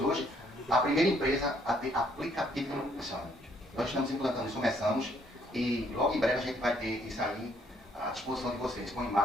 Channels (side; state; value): both; normal; correlation 0.68